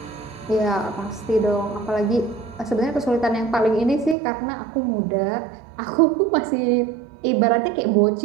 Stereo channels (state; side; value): drops out; left; at 4.2 s